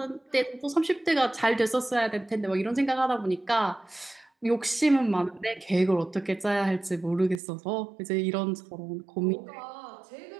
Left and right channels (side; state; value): left; drops out; at 7.4 s